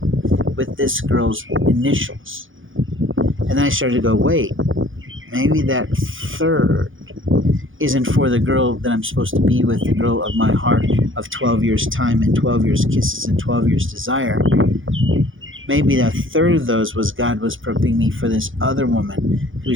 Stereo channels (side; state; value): left; late; 0.58 ms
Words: with this girl's initials? And then I started to go, wait, maybe that third isn't for the girl that I'm supposed to be with, the girl of my heart of 12 years time and 12 years kisses and 12 years desire. Maybe a third of those was God was prepping me for this other woman